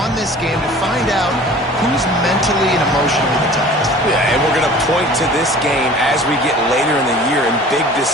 this game to find out who's mentally and emotionally the toughest. Yeah, and we're going to point to this game as we get later in the year and big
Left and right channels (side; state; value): both; normal; correlation 0.45